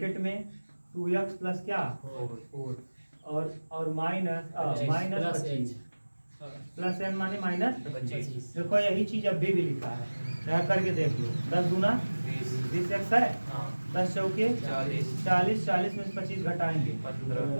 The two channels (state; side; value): inverted; both; correlation -1.00